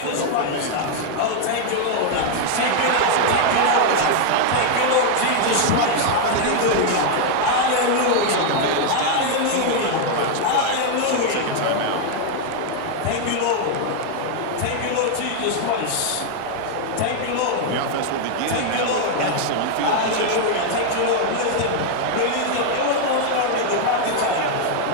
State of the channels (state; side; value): different; both; correlation 0.00